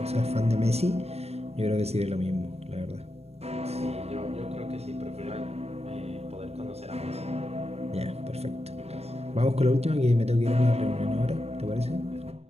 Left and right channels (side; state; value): left; late; 0.30 ms